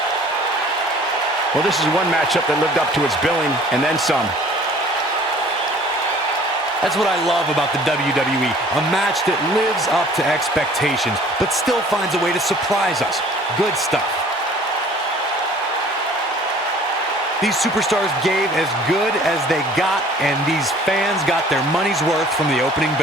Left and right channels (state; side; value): normal; both; correlation 0.51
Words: Well, this is one matchup that lived up to its billing, and then some. That's what I love about the WWE. A match that lives up to expectations, but still finds a way to surprise us. Good stuff. These superstars gave as good as they got, and these fans got their money's worth from the opening